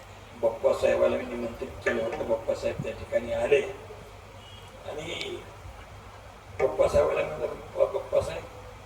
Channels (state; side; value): identical; both; correlation 1.00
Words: बाप्पासाहेबाला मी निमंत्रित केलं होतं. बाप्पासाहेब त्या ठिकाणी आले आणि बाप्पासाहेबाला म्हणलं,